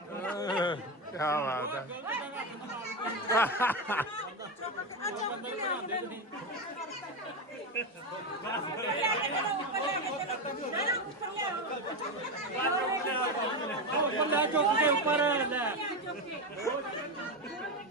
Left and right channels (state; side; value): normal; both; correlation 0.13